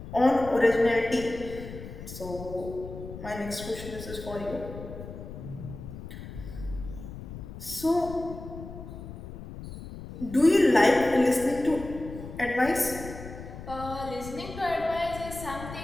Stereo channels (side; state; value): left; noise; rumble, 11 dB below the sound